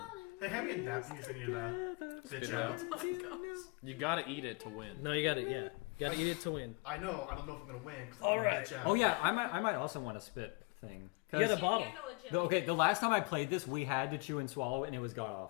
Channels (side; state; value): right; quieter; 29.1 dB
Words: Hey, hand me a napkin so you bitch Spit out. out. Oh my gosh. You gotta eat it to win. No, you gotta gotta eat it to win. I know, I don't know if I'm gonna win. 'Cause I'm All gonna right. bitch out. Oh yeah, I might also want a spit thing. You got a 'Cause bottle. handle a jelly okay, bean. the last time I played this, we had to chew and swallow, and it was god